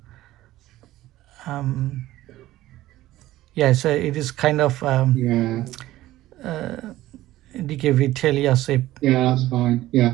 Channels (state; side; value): quieter; left; 15.6 dB